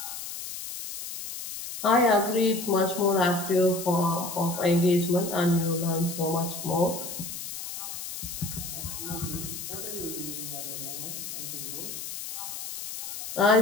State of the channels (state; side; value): noise; left; hiss, 8 dB below the sound